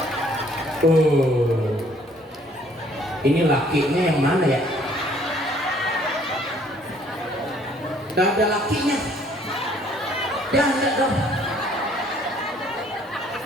Ini lakinya yang mana ya? Gak ada lakinya. Ada dong.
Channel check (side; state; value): both; normal; correlation 0.61